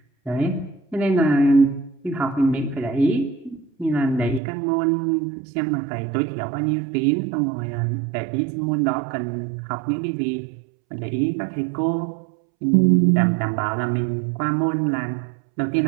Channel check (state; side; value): drops out; left; at 4.4 s